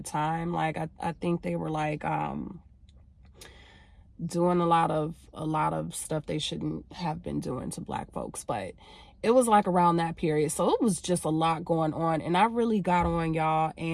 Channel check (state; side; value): identical; both; correlation 1.00